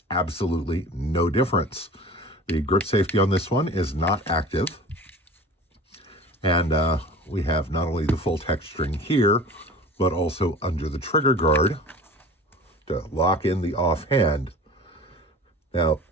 absolutely no difference. The grip safety on this one is not active. And we have not only the full texturing here, but also under the trigger guard to lock in the offhand. Now,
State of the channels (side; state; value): both; normal; correlation 0.40